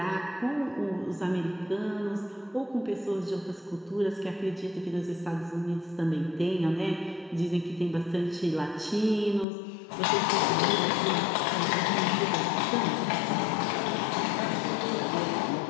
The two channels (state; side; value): drops out; right; at 9.5 s